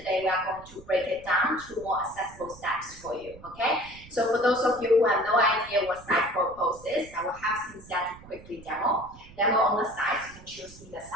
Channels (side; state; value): right; noise; rumble, 20 dB below the sound